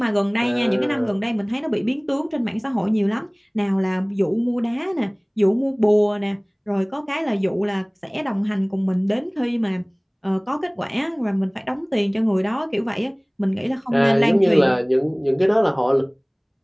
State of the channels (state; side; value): identical; both; correlation 1.00